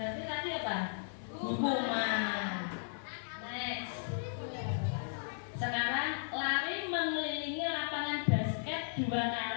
tadi apa? Hukuman. Next. Sekarang lari mengelilingi lapangan basket 2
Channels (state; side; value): silent; right; digital silence